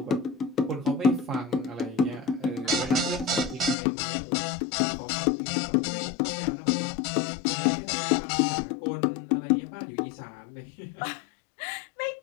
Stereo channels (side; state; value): right; drops out; at 3.8 s